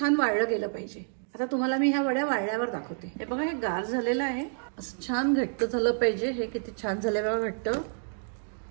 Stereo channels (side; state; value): left; silent; digital silence